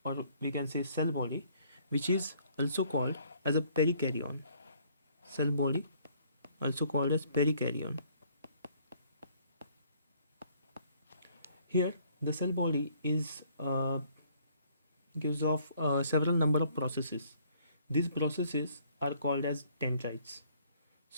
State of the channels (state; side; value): inverted; both; correlation -0.62